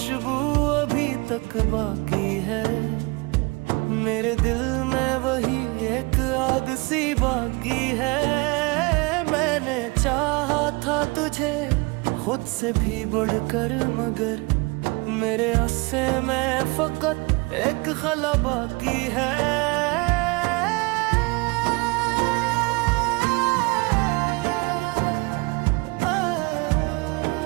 अभी तक बाकी है, मेरे दिल में वही एक आग सी बाकी है। मैंने चाहा था तुझे खुद से भी बढ़कर, मगर मेरे हिस्से में फकत एक खला बाकी है।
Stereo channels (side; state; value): left; quieter; 26.8 dB